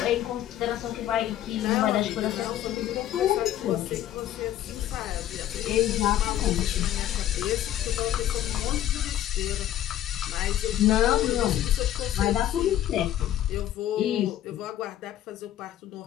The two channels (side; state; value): right; quieter; 12.2 dB